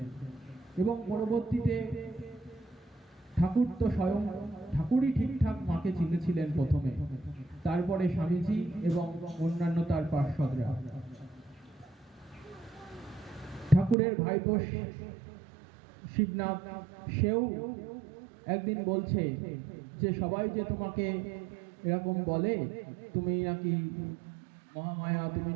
এবং পরবর্তীতে ঠাকুর তো স্বয়ং ঠাকুরই ঠিকঠাক মাকে চিনেছিলেন প্রথমে, তারপরে স্বামীজি এবং অন্যান্য তার পার্শ্বদরা। ঠাকুরের ভাইপো শিবনাথ, সেও একদিন বলছে যে সবাই যে তোমাকে এরকম বলে, তুমি নাকি মহামায়া, তুমি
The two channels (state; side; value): drops out; left; at 14.0 s